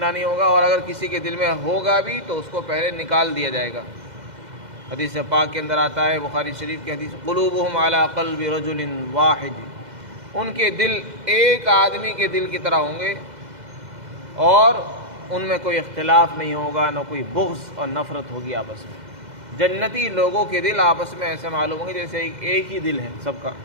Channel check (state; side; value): late; left; 2.0 ms